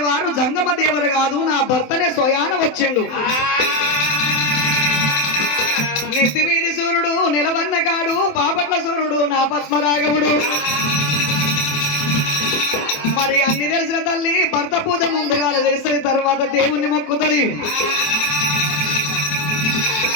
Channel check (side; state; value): right; late; 27 ms